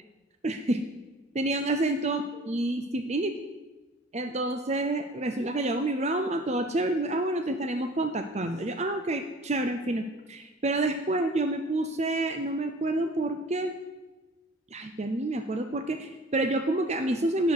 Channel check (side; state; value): both; normal; correlation 0.47